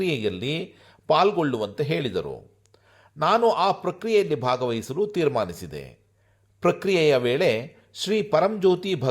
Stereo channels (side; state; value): both; identical; correlation 1.00